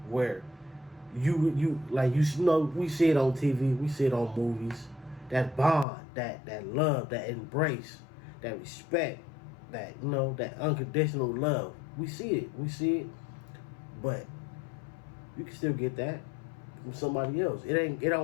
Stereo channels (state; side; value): drops out; right; at 5.9 s